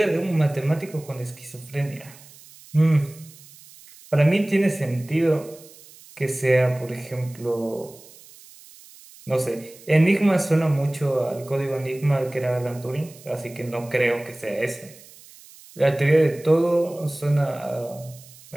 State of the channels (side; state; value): right; noise; hiss, 22 dB below the sound